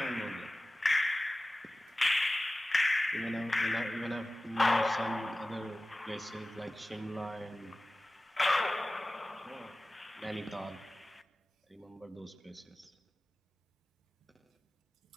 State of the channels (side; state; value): both; normal; correlation 0.97